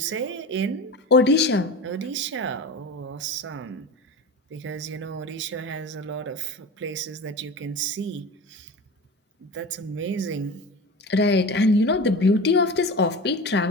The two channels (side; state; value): both; normal; correlation 0.31